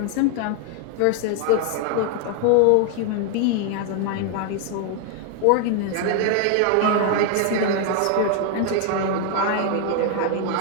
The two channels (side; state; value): both; different; correlation 0.01